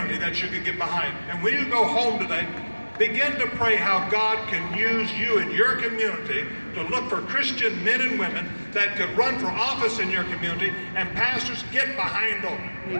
that you can get behind. And when you go home today, begin to pray how God can use you in your community to look for Christian men and women that could run for office in your community. And pastors, get behind them.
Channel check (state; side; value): inverted; both; correlation -1.00